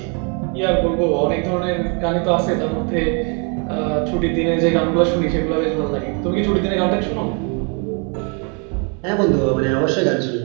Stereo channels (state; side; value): quieter; left; 36.4 dB